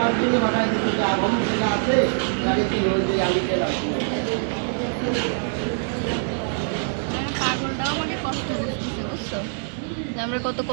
জন্য পাঠাই দিচ্ছে যে আবহাম যেটা আছে তাকে কি হয়েছে আমি গেলাম। পাগলটাও আমাকে কষ্ট দিচ্ছে, বুঝছো যে আমরা কত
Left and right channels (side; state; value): left; silent; digital silence